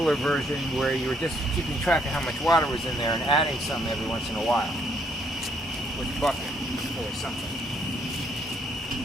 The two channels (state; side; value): normal; both; correlation 0.69